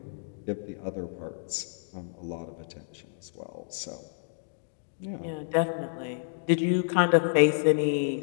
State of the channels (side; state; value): right; silent; digital silence